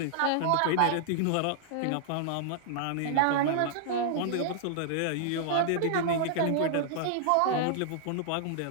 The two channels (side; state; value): both; different; correlation -0.01